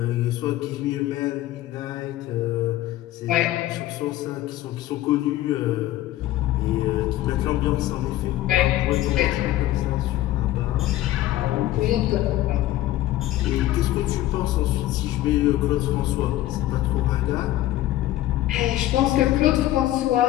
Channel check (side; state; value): right; quieter; 14.9 dB